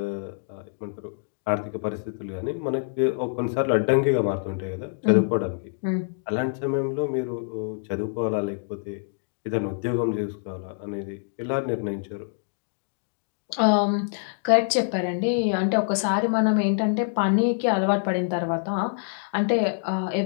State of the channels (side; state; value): right; silent; digital silence